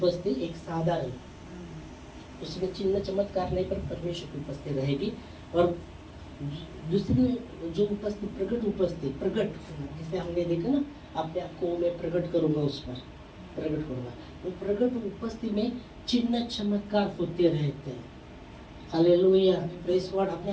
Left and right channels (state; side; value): identical; both; correlation 1.00